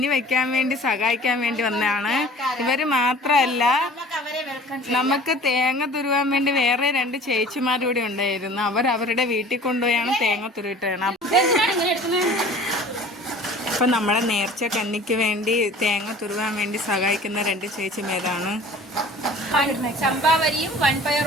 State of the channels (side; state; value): both; normal; correlation 0.46